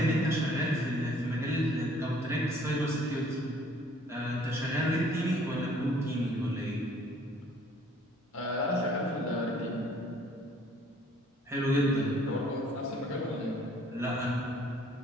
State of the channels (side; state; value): both; normal; correlation 0.58